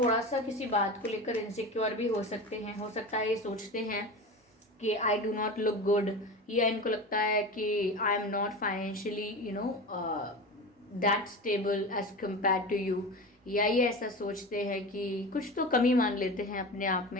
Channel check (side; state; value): both; normal; correlation 0.28